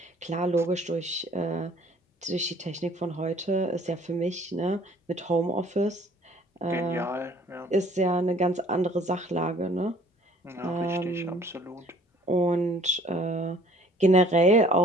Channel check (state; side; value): normal; both; correlation 0.55